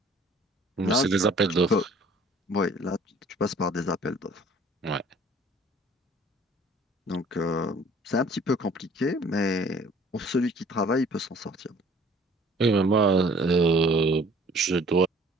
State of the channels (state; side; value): normal; both; correlation 0.54